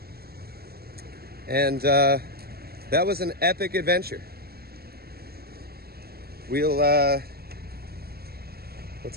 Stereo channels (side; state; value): left; late; 0.45 ms